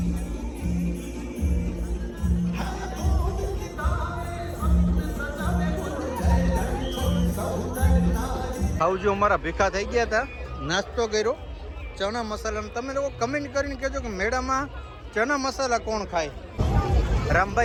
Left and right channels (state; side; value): identical; both; correlation 1.00